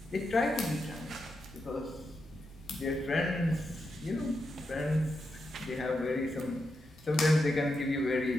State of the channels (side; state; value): both; normal; correlation 0.86